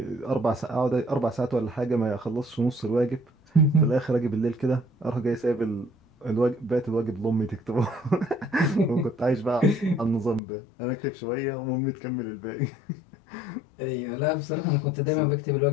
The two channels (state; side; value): drops out; right; at 10.4 s